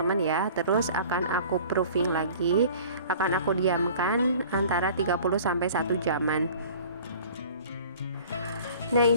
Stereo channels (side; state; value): both; inverted; correlation -0.46